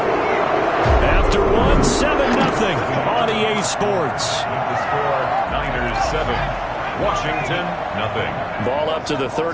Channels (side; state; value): both; identical; correlation 1.00